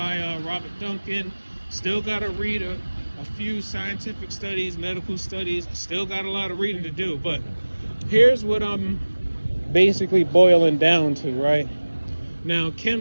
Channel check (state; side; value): inverted; both; correlation -1.00